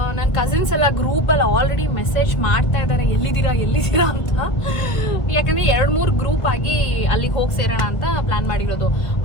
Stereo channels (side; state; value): right; late; 1.4 ms